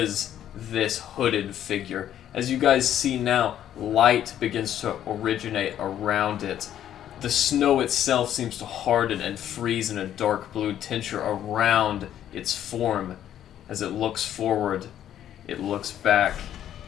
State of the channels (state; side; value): quieter; right; 11.0 dB